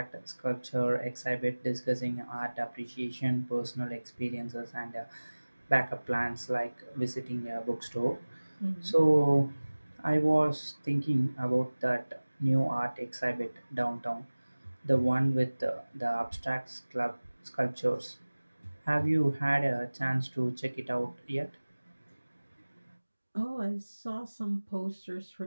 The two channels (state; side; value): inverted; both; correlation -1.00